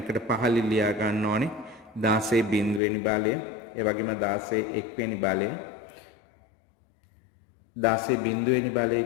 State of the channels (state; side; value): drops out; right; at 2.8 s